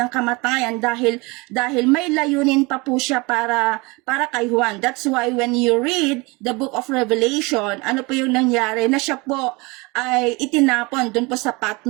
ng kamatayan dahil may layunin pa po siya para kay Juan. That's why when you read the book of Revelation, ano po yung nangyari na siya po ay itinapon doon po sa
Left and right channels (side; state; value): left; quieter; 25.9 dB